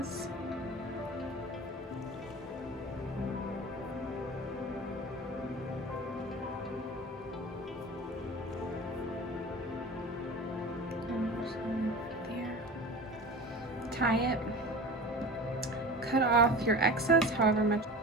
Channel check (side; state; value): both; normal; correlation 0.34